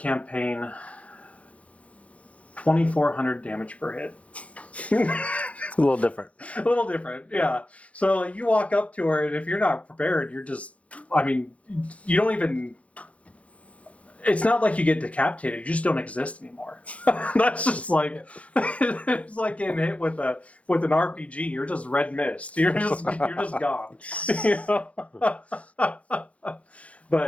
2,400 damage per hit. A little different. A little different, yeah. So you walk up to her, and if you're not prepared, you're just, I mean, you don't even, it's not like you get decapitated, you just don't exist anymore. That's just like, it's like getting hit with an RPG, you're just red mist. You're just gone. You know?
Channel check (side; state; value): right; late; 0.064 ms